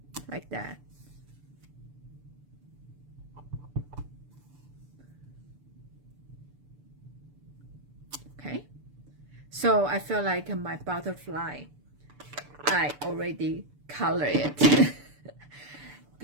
like that. Okay, so I feel like my butterfly, I already color it.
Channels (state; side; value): late; left; 6.9 ms